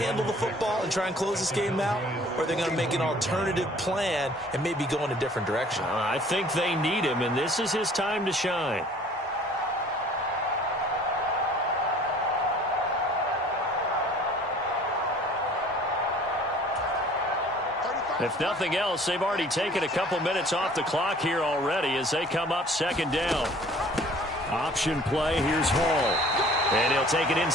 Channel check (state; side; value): normal; both; correlation 0.52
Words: the football and try and close this game out? Or are they going to make an alternative plan and maybe go in a different direction? I think they need him, and this is his time to shine. If nothing else, they've already taken a couple minutes off the clock here already as they come up 2nd down. Option play, here's Hall. And he'll take it